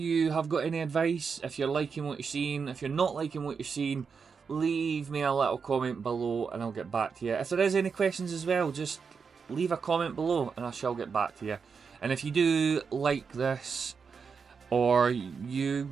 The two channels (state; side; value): quieter; left; 5.7 dB